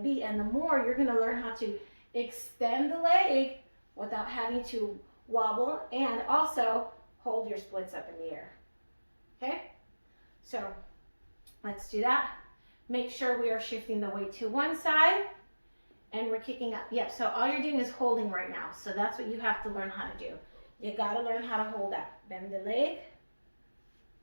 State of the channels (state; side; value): inverted; both; correlation -1.00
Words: be. And the more you're going to learn how to extend the leg without having to wobble and also hold your splits up in the air. Okay? So let's do that. Make sure we are shifting the weight to one side and we're kicking up. Yep, so all you're doing is holding right now. So that's what you have to learn how to do. You gotta learn how to hold that. Bend the leg.